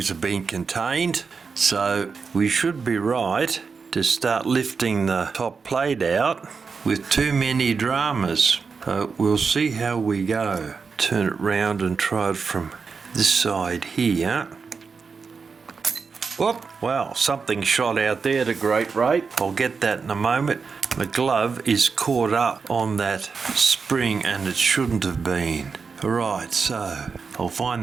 have been contained, so we should be right to start lifting the top plate out with too many dramas. So we'll see how we go. Turn it round and try it from this side here. Whoop! Wow, something shot out there at a great rate. I'll get that in a moment. The glove is caught up on that spring and it shouldn't have been. Alright, so I'll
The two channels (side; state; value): left; quieter; 5.2 dB